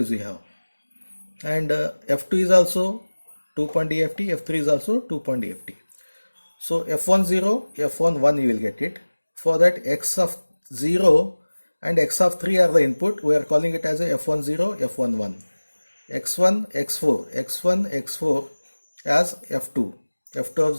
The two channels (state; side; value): inverted; both; correlation -1.00